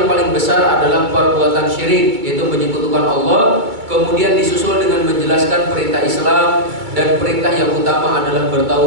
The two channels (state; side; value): late; left; 2.3 ms